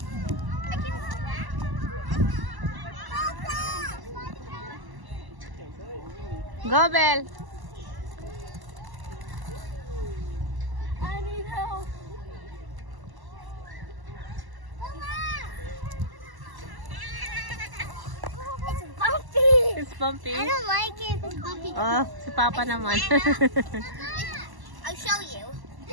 Go, Belle! I need help. It's bumpy. I don't like it. It's bumpy. Oh, si Papa naman. I'll show you.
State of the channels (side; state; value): left; late; 1.0 ms